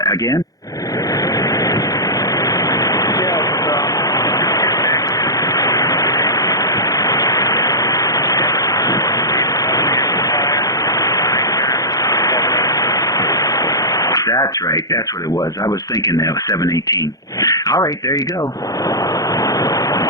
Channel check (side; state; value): right; late; 0.17 ms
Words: Again? That's right. That's what it was. I was thinking that was 718. All right, there you go.